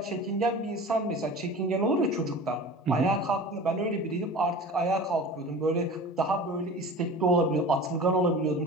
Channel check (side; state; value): both; normal; correlation 0.37